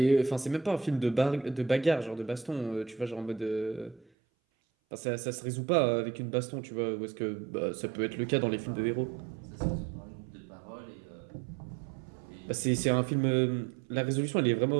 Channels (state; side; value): drops out; left; at 4.0 s